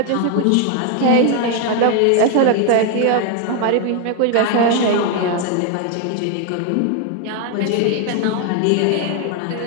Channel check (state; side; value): different; both; correlation 0.01